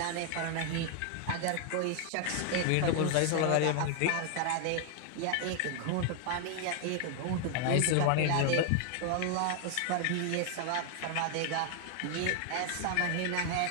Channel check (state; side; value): different; both; correlation 0.00